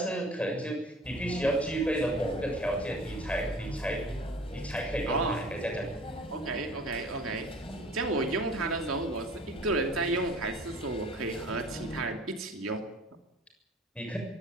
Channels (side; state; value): both; normal; correlation 0.45